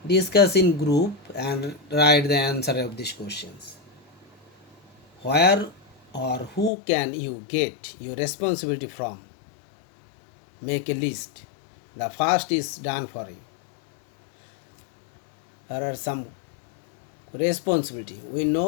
discuss in group and write the answer of these questions. Where or who can you get your responsibility from? Make a list. The first is done for you. There are some responsibility. We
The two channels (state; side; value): drops out; right; at 6.7 s